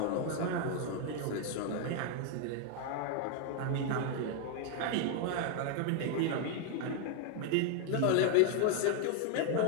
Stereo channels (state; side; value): different; both; correlation 0.01